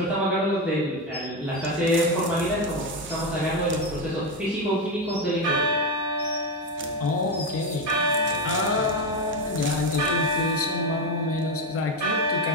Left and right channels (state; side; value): normal; both; correlation 0.12